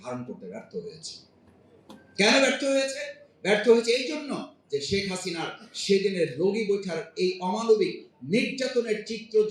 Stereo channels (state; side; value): identical; both; correlation 1.00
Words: ধারণ করতে ব্যর্থ হয়েছে। কেন ব্যর্থ হয়েছে? ব্যর্থ হয়েছে এই জন্য যে শেখ হাসিনার সেদিনের রোগী বৈঠার এই অমানবিক নির্যাতনের চিত্র